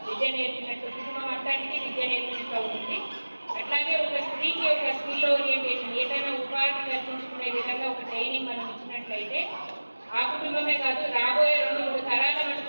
విద్య నేర్పినట్టు, కుటుంబం అంతానికి విద్య నేర్పినట్టు అవుతుంది. అట్లాగే ఒక స్త్రీకి ఒక స్కిల్ ఓరియంటేషన్, ఏదైనా ఉపాధి కల్పించుకునే విధంగా ఒక ట్రైనింగ్ మనం ఇచ్చినట్లయితే ఆ కుటుంబమే కాదు, రాబోయే 2-3 తరాల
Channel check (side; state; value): both; inverted; correlation -1.00